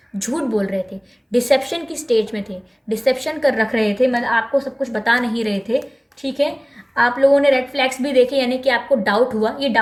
झूठ बोल रहे थे, डिसेप्शन की स्टेज में थे, डिसेप्शन कर रख रहे थे, मतलब आपको सब कुछ बता नहीं रहे थे। ठीक है। आप लोगों ने रेड फ्लैग्स भी देखे, यानी कि आपको डाउट हुआ, ये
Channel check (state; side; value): identical; both; correlation 1.00